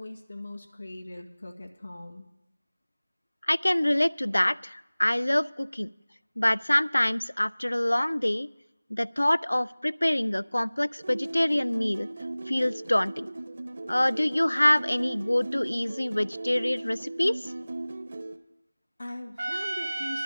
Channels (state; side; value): inverted; both; correlation -1.00